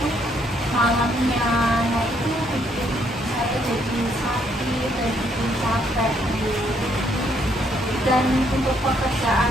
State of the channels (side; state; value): both; normal; correlation 0.70